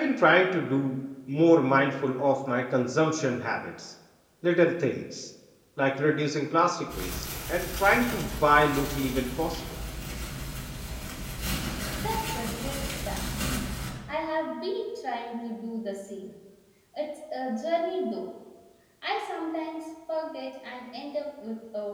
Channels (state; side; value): identical; both; correlation 1.00